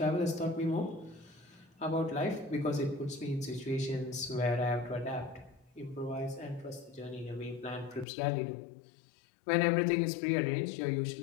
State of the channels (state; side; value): drops out; right; at 8.1 s